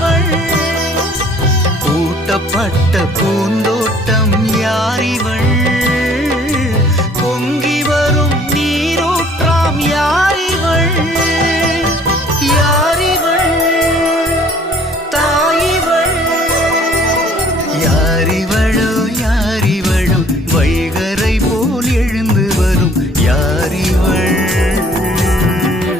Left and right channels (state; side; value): normal; both; correlation 0.56